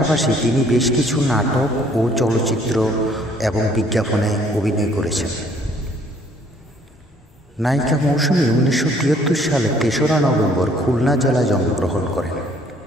তিনি বেশ কিছু নাটক ও চলচ্চিত্র এবং বিজ্ঞাপনে অভিনয় করেছেন। নায়িকা মৌসুমী 1973 সালে 3রা নভেম্বর খুলনা জেলায় জন্মগ্রহণ করেন।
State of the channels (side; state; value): both; normal; correlation 0.61